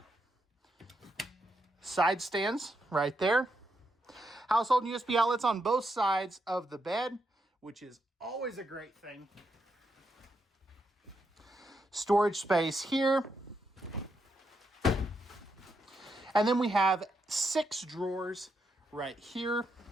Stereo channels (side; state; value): both; normal; correlation 0.81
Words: side stands right there. Household USB outlets on both sides of the bed, which is always a great thing. Storage space here. And then we have 6 drawers right here.